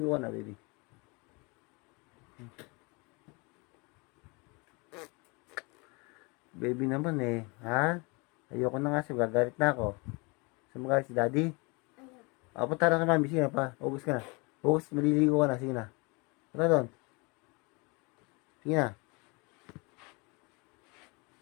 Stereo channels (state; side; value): quieter; right; 29.0 dB